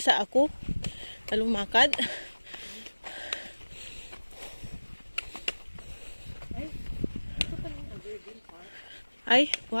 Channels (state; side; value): inverted; both; correlation -1.00